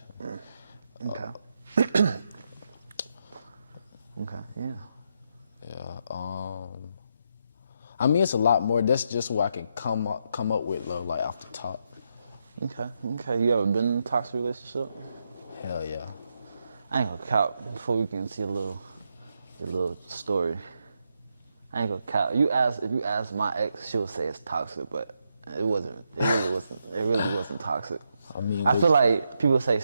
Okay. Okay, yeah. Yeah, I mean, it's a lot more. That's just what I can come up with, though, like, off the top. Okay. You ever been in a toxic relationship? Hell yeah. I ain't gonna count before we can see your little story. I ain't gonna count. If you ask my ex, she'll say it's toxic, but it wasn't. It really wasn't toxic. I feel like people say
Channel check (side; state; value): both; inverted; correlation -0.81